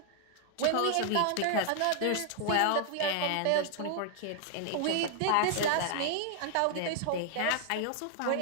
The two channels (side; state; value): both; different; correlation 0.00